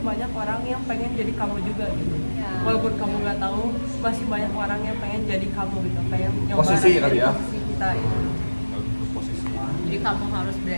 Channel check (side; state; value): both; inverted; correlation -1.00